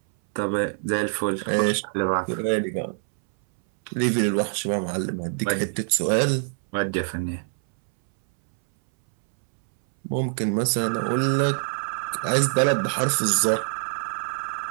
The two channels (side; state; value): left; silent; 62 dB below the other